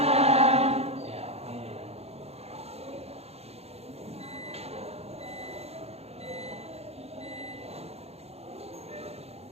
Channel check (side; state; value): left; late; 0.30 ms